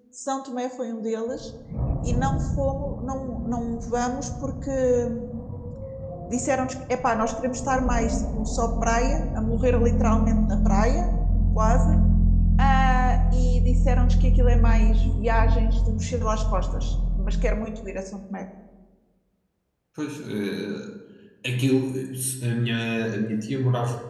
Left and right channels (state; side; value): identical; both; correlation 1.00